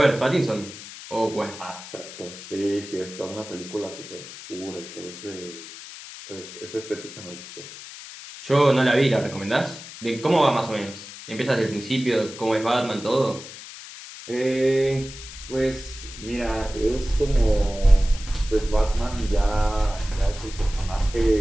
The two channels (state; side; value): noise; left; hiss, 14 dB below the sound